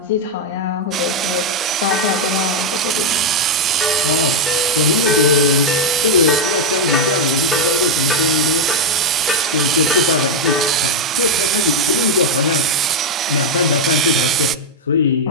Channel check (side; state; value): both; normal; correlation 0.05